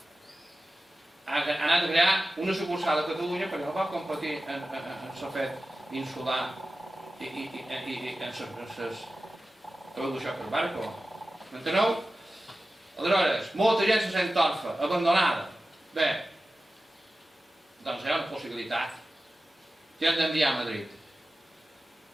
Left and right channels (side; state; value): both; normal; correlation 0.94